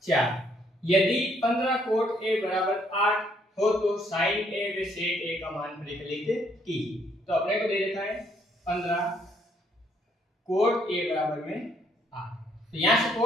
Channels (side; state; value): both; normal; correlation 0.68